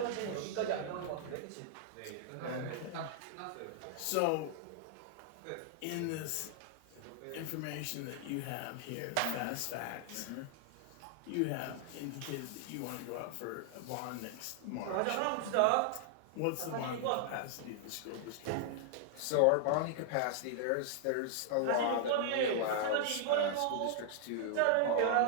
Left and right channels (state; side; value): different; both; correlation -0.01